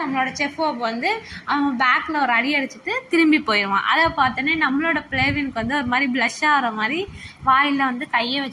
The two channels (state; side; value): identical; both; correlation 1.00